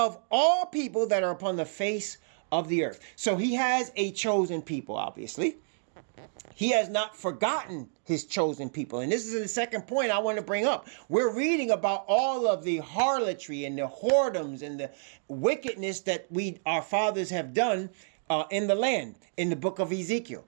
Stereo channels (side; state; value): left; silent; digital silence